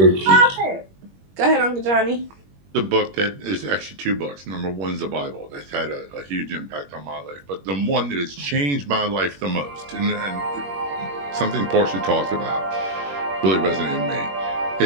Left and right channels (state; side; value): late; left; 21 ms